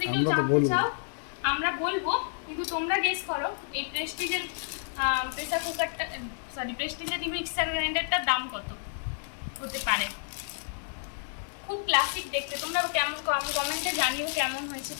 আমরা তো জানতে বলবো, চাও আমরা বলবো, কিন্তু তোমরা গেস করো এই প্রেস্টিজের প্রেসার কুকারটা, প্রেস্টিজের মিক্সার গ্রাইন্ডারটার দাম কত হতে পারে। খুব ক্লাসিক দেখতে। তোমরা কেমন কমেন্টে জানিও কেমন হয়েছে,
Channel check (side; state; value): right; silent; digital silence